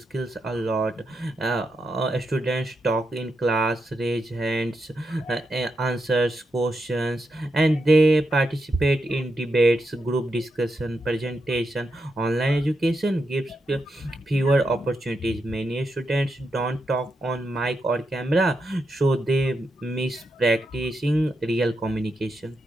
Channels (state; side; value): normal; both; correlation 0.85